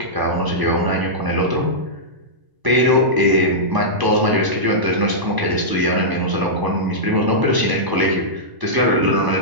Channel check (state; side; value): late; left; 1.0 ms